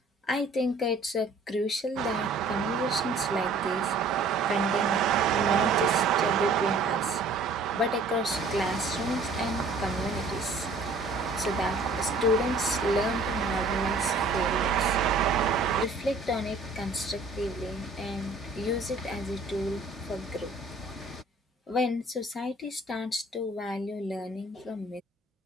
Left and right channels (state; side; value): quieter; left; 3.2 dB